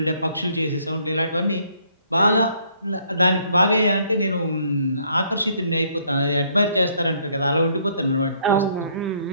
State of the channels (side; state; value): both; inverted; correlation -0.66